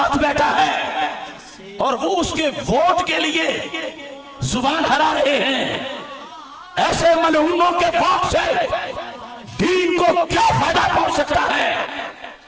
بیٹھا ہے، اور وہ اس کے ووٹ کے لیے زبان ہرا رہے ہیں، ایسے ملعونوں کے ووٹ سے دین کو کیا فائدہ پہنچ سکتا ہے؟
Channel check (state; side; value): identical; both; correlation 1.00